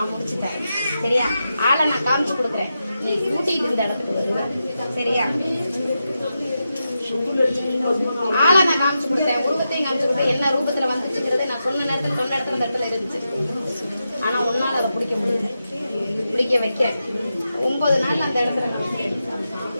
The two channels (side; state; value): both; inverted; correlation -0.88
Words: முடிச்சுட்டேன். சரியா? ஆளை நான் காமிச்சு கொடுக்குறேன், நீ கூட்டிட்டு இந்த இடத்துக்கு வருவ. சரியா? ஆளை நான் காமிச்சு கொடுத்தேன், உருவத்தையும் காமிச்சு கொடுத்தேன். என்ன ரூபத்துல வந்துச்சுங்கிறத நான் சொன்ன நேரத்துல சொன்ன இடத்துல இந்த இடத்துல இருந்துச்சு. ஆனா உன்னால அதை பிடிக்க முடியல, பிடிக்க வைக்க 9 நாள் அந்த இடத்துல